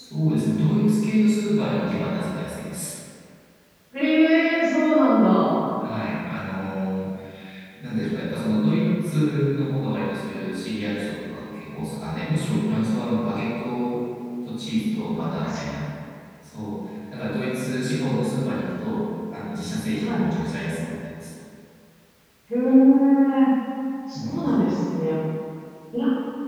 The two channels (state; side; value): identical; both; correlation 1.00